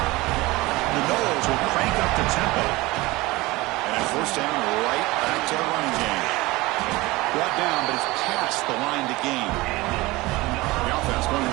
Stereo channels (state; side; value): quieter; left; 21.0 dB